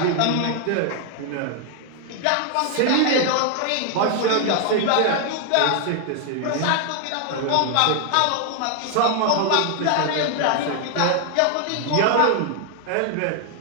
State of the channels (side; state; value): both; different; correlation 0.00